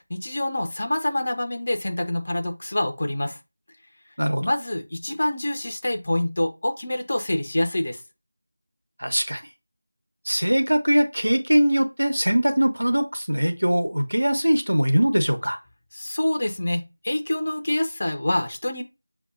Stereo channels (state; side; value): inverted; both; correlation -0.99